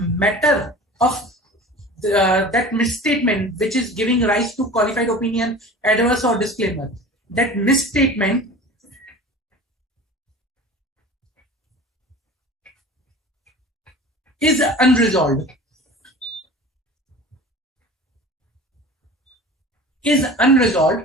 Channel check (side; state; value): both; normal; correlation 0.38